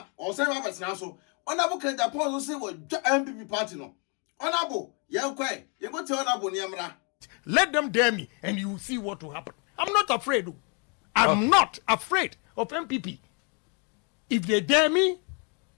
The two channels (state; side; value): quieter; right; 35.8 dB